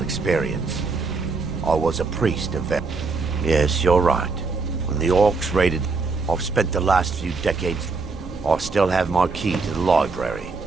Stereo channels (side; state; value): left; quieter; 4.2 dB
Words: experience. I was a priest of Yes, you're right. When the orcs raided, I've spent the last few decades... I still have my key to the library.